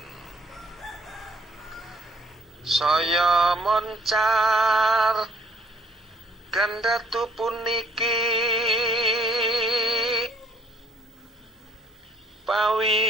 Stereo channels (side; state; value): both; normal; correlation 0.63